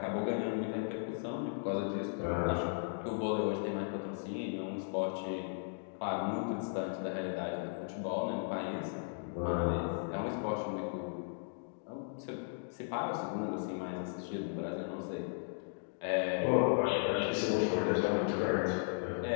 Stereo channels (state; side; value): silent; right; digital silence